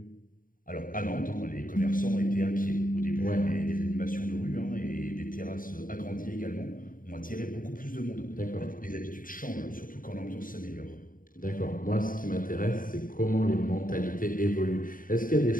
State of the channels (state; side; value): late; right; 0.40 ms